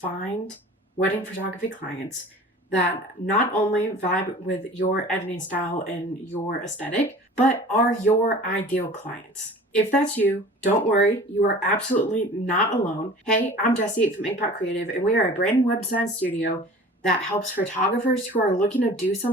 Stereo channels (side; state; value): both; normal; correlation 0.43